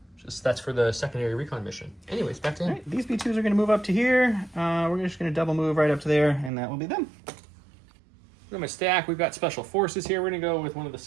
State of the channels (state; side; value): drops out; left; at 6.5 s